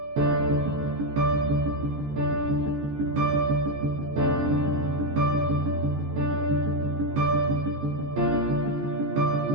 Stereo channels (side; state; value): left; late; 14 ms